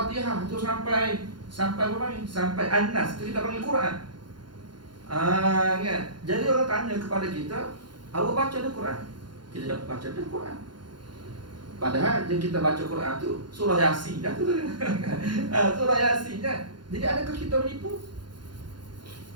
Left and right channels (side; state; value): left; late; 0.71 ms